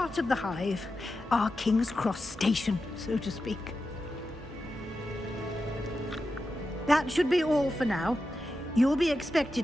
of the Hive. Our King's Cross station, so to speak. That should be all for now. You'll be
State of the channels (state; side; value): normal; both; correlation 0.90